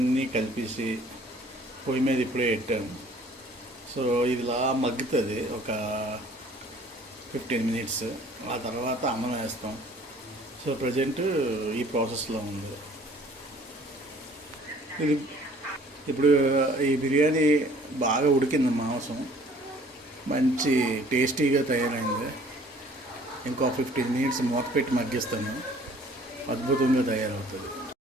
కలిపేసి పొయ్యి మీద ఇప్పుడే పెట్టాను. సో ఇది ఇలా మగ్గుతుంది ఒక 15 మినిట్స్. ఆ తర్వాత అన్నం వేస్తాం. సో ప్రజెంట్ ఈ ప్రాసెస్లో ఉంది. ఇది ఇప్పుడు ఈ బిర్యానీ బాగా ఉడికింది, మాంసం మంచి టేస్టీగా తయారైంది. ఇంకో 15 మినిట్స్ మూత పెట్టి మగ్గిస్తాను, అద్భుతంగా తయారవుతుంది.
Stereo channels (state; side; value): normal; both; correlation 0.54